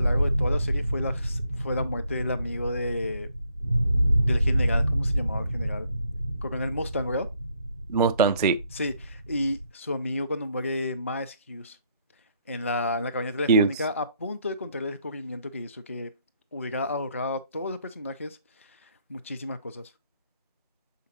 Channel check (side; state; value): both; inverted; correlation -0.70